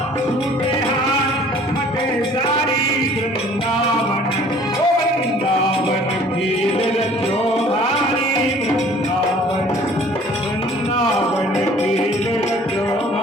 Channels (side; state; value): both; normal; correlation 0.53